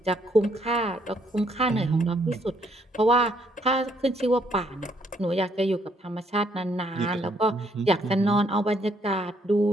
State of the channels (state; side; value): normal; both; correlation 0.70